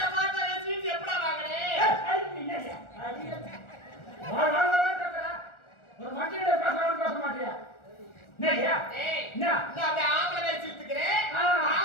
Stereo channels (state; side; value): late; right; 1.4 ms